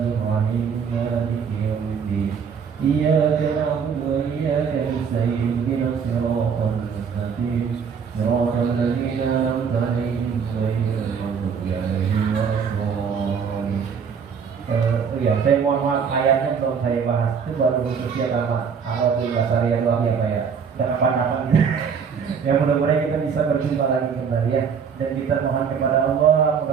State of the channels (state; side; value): quieter; left; 6.6 dB